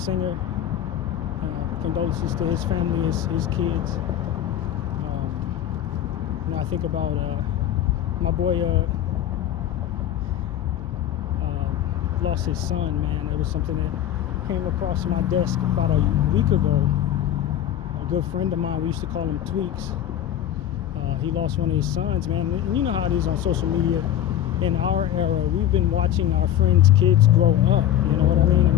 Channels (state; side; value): quieter; right; 11.4 dB